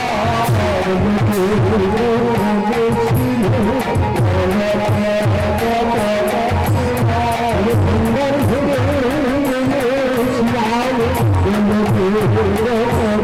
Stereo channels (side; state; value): both; identical; correlation 1.00